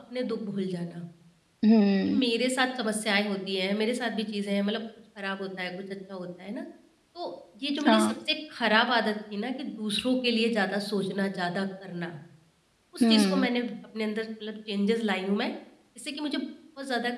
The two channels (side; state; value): both; identical; correlation 1.00